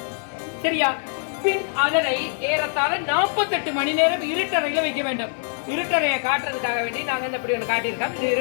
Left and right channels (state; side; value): silent; right; 60 dB below the other